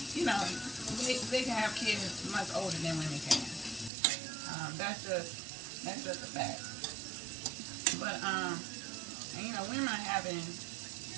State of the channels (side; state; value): left; drops out; at 3.9 s